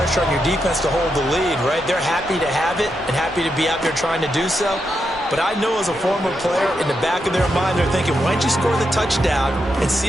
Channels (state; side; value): normal; both; correlation 0.84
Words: on your defense to hold the lead, right? They're happy to have it and happy to be out there trying to do so. But I know as a former player, in the back of their mind, they're thinking, why don't you score the touchdown and